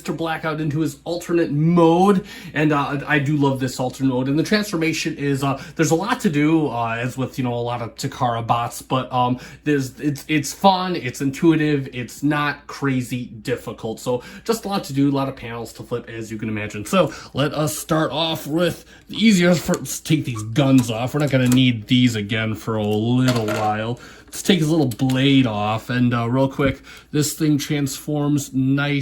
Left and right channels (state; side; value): identical; both; correlation 1.00